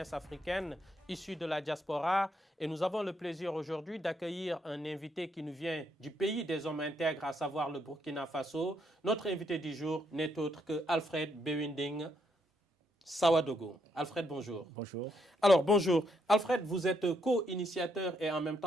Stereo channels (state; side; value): normal; both; correlation 0.76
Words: africaine issue de la diaspora. Et nous avons le plaisir aujourd'hui d'accueillir un invité qui nous vient du pays des hommes intègres, à savoir le Burkina Faso. Notre invité du jour n'est autre que Alfred Bewinding Sawadogo. Alfred, bonjour. Bonjour. Alors, bonjour. Alfred, vous êtes co-initiateur et en même